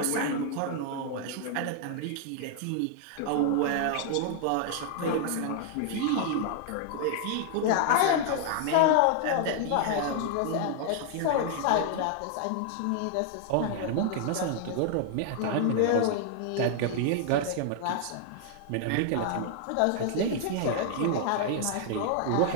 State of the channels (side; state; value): both; different; correlation 0.00